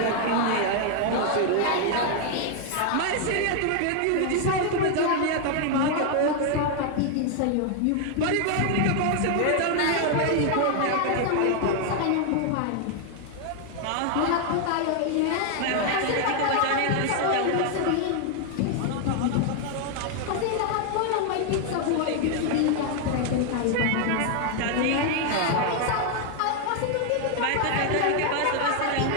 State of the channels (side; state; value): both; different; correlation 0.00